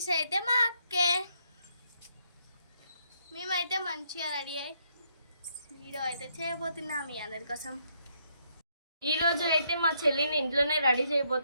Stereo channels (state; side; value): inverted; both; correlation -0.74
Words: అయితే మా అక్కే. మేమైతే మంచిగా రెడీ అయ్యి వీడియో అయితే చేయబోతున్నాం మీ అందరి కోసం. ఈ రోజు అయితే మా చెల్లిని ఇంట్లోనే రెడీ